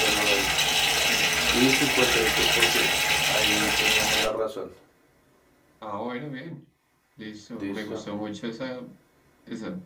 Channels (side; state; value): both; identical; correlation 1.00